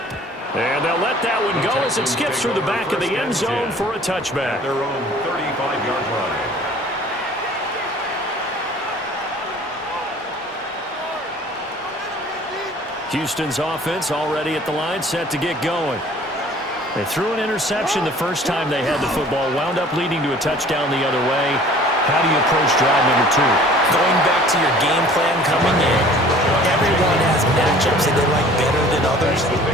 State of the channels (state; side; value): normal; both; correlation 0.50